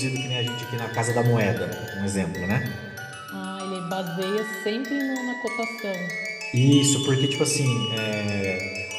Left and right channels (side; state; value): both; identical; correlation 1.00